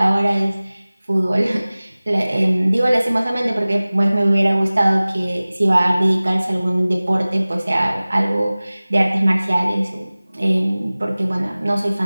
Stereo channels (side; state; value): both; inverted; correlation -0.99